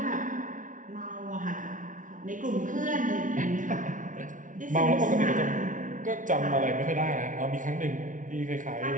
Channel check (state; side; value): late; left; 0.38 ms